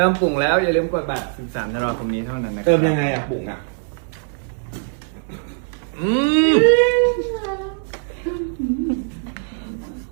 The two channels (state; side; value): silent; left; digital silence